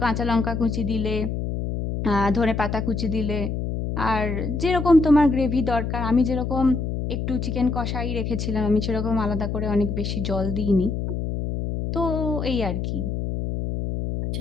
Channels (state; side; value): noise; left; hum, 3 dB below the sound